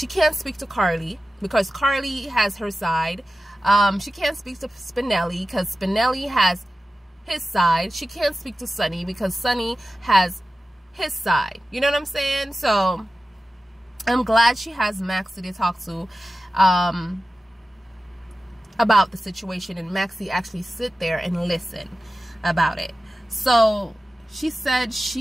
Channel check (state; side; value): normal; both; correlation 0.94